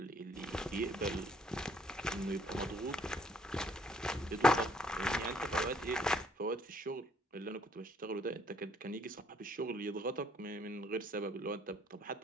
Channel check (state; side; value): normal; both; correlation 0.64